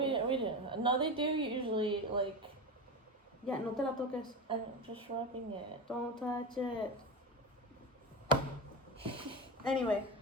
We didn't. No, they do usually like. Yeah, no te la toques. I'm just rubbing it. Don't touch it. Anyway,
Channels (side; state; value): both; normal; correlation 0.22